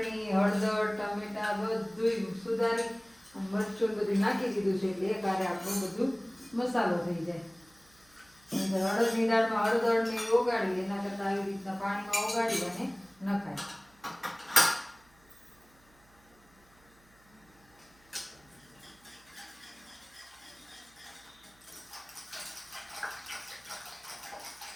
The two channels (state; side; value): noise; right; hum, 30 dB below the sound